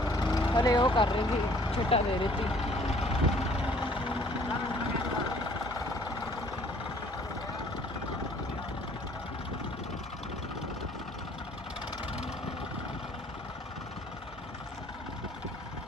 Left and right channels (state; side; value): normal; both; correlation 0.57